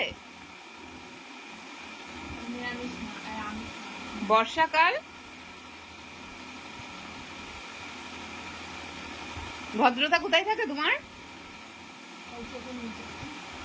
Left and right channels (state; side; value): identical; both; correlation 1.00